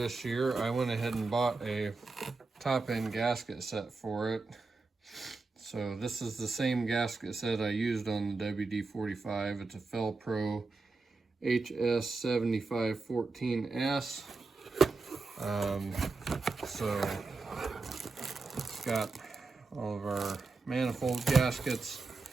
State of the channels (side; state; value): left; quieter; 3.9 dB